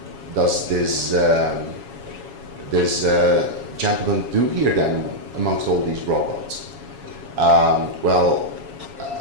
does this gentleman do here then amongst all these robots?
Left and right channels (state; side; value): late; left; 7.2 ms